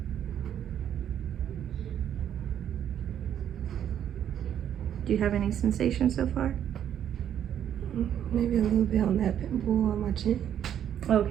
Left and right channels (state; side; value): quieter; left; 9.9 dB